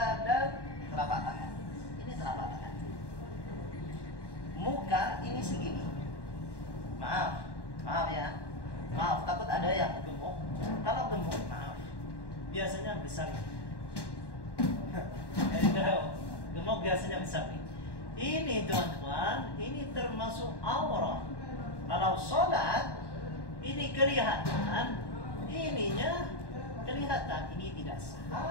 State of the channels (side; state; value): right; late; 1.1 ms